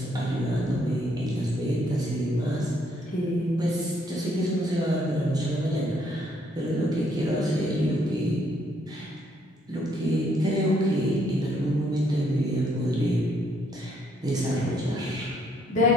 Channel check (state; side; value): normal; both; correlation 0.69